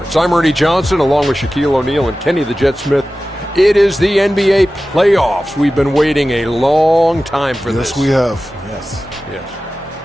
I'm Ernie Johnson, along with Shaquille O'Neal and Kenny the Jet Smith. It is the NBA playoffs. We've been waiting a long time for this. Yes, we have. Yes.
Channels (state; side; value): normal; both; correlation 0.95